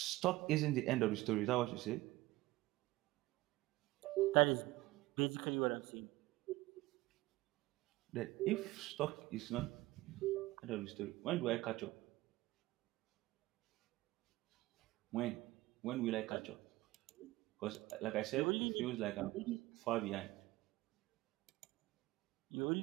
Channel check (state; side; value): quieter; left; 18.9 dB